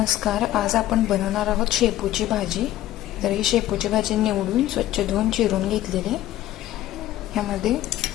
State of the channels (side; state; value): right; quieter; 14.1 dB